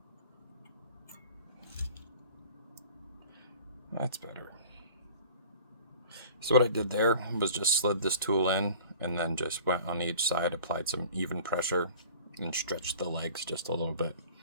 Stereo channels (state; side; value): inverted; both; correlation -0.45